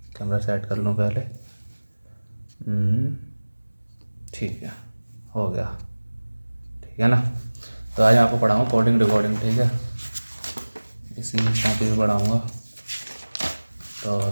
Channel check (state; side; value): inverted; both; correlation -1.00